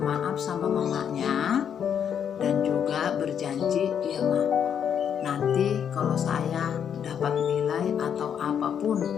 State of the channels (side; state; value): right; quieter; 8.3 dB